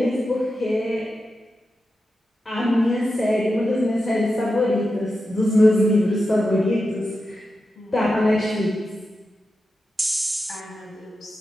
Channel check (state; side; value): normal; both; correlation 0.90